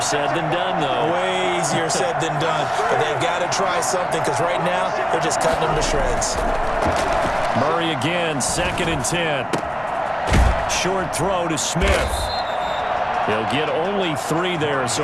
than done, though. Way easier said than done. But they've got to try something because right now they're just cutting them to shreds. Murray again, 2nd and 10. Short throw to Smith. He'll get only 3 there,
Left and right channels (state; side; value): identical; both; correlation 1.00